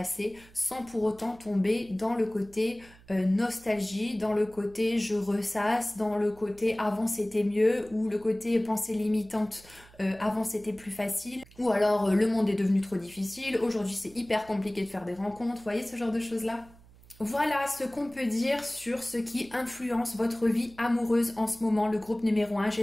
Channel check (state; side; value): noise; right; hum, 24 dB below the sound